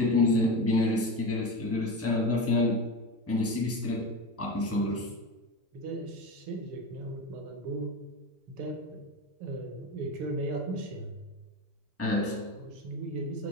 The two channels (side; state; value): both; normal; correlation 0.23